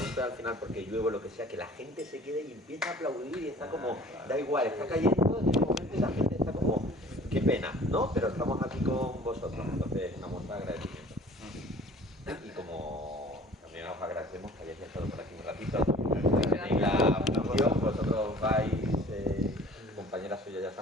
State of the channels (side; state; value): both; normal; correlation 0.48